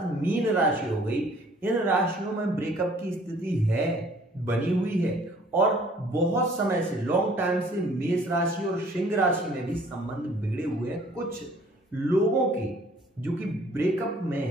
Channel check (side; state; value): both; normal; correlation 0.56